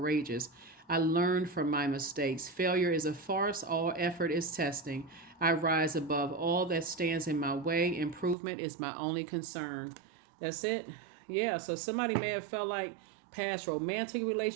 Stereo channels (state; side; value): drops out; left; at 8.3 s